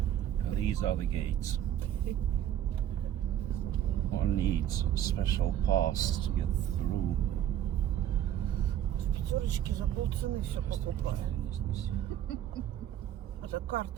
These are the gates. One needs a special pass to get through. В пятерочке за полцены все покупаю. Это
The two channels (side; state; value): left; quieter; 11.1 dB